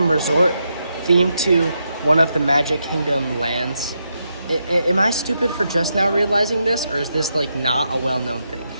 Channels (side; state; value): both; inverted; correlation -0.83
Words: resort themed to one of the Magic Kingdom lands? Am I stupid for just now realizing this, or is this like not a well-known thing?